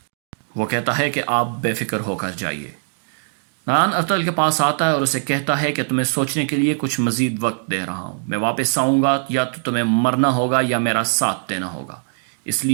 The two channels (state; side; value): silent; left; 65 dB below the other